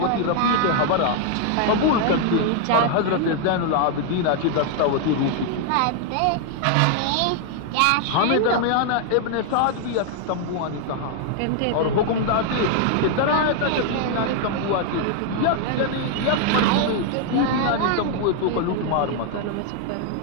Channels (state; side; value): different; both; correlation 0.00